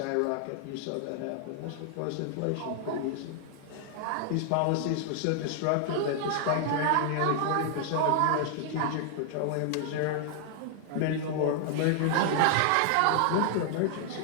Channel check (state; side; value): different; both; correlation 0.00